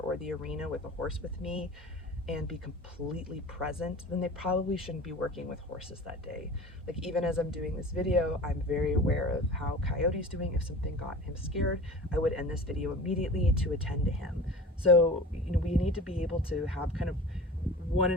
or the arena with a horse with me and be completely present, then they probably shouldn't be working with horses that day. Like even as I'm doing this video, I'm very aware of how Coyote's doing. If something got him scared, I would end this video immediately to attend to him. So, we need to be able to have kind of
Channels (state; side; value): normal; both; correlation 0.38